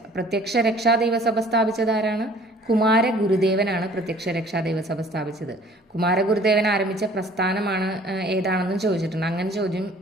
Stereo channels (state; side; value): normal; both; correlation 0.52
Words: പ്രത്യക്ഷ രക്ഷാ ദൈവസഭ സ്ഥാപിച്ചത് ആരാണ്? കുമാരഗുരുദേവനാണ് പ്രത്യക്ഷ രക്ഷാ ദൈവസഭ സ്ഥാപിച്ചത്. കുമാരഗുരുദേവൻ ആരംഭിച്ച പ്രസ്ഥാനമാണ് ഏതാണെന്നും ചോദിച്ചിട്ടുണ്ട്. അങ്ങനെ ചോദ്യം